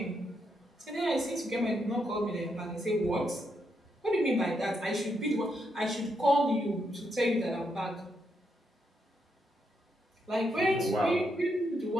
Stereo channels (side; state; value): both; normal; correlation 0.80